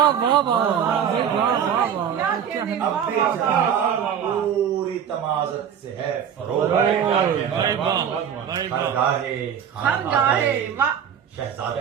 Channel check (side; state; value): left; quieter; 8.4 dB